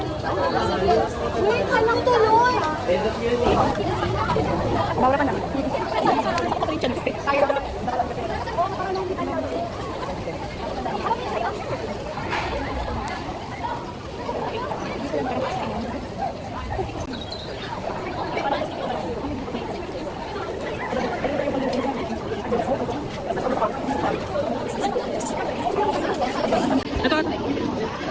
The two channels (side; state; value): both; identical; correlation 1.00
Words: Bawal ka na.